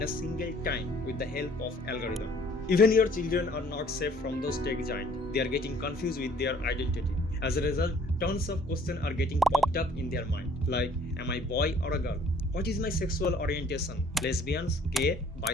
a single time with the help of algorithm. Even your children are not safe from those tech giants. They are getting confused with their identity. As a result, tons of questions are getting popped up in their mind. Like, am I boy or a girl? What is my sexual orientation? Lesbians, gay,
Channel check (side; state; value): both; normal; correlation 0.57